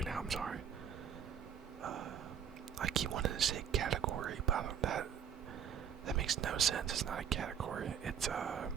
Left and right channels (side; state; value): left; quieter; 8.3 dB